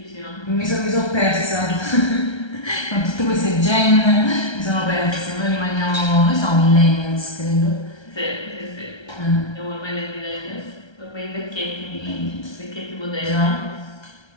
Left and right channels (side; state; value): right; late; 1.3 ms